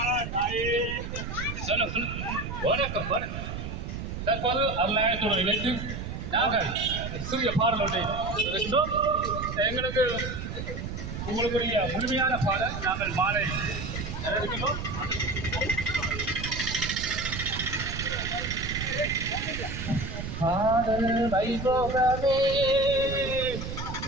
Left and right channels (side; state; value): right; noise; rumble, 6 dB below the sound